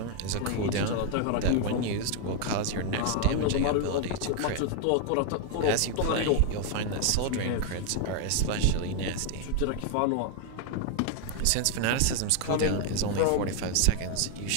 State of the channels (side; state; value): both; different; correlation 0.01